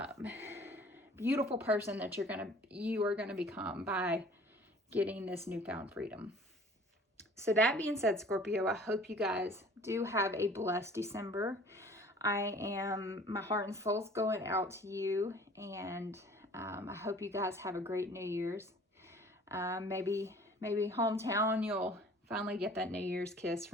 beautiful person that you are gonna become by getting this newfound freedom. So that being said, Scorpio, I hope you guys do have a blessed December. My heart and soul's going out to you, and I hope you guys have a great New Year's. Maybe hometown, you'll finally get that New Year's kiss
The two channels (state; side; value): normal; both; correlation 0.50